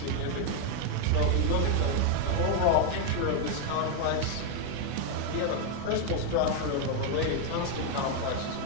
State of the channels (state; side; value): different; both; correlation 0.01